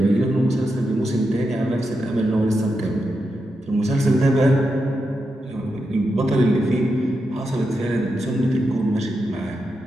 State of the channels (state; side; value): normal; both; correlation 0.86